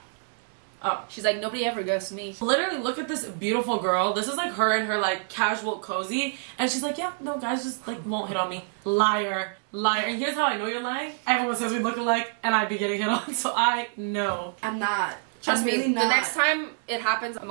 Oh. She's like, nobody ever ghosts me. Literally, look at this beautiful girl. This is like her and her like casual cozy. And she's like, yeah, no, guys just like won't hit on me. Liar. Liar. And here's how I know you're lying. Everyone says we look alike and I'd be getting hit on. So I know. I'm not Trust me, really not. the next time it happens, I'm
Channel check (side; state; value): left; silent; 60 dB below the other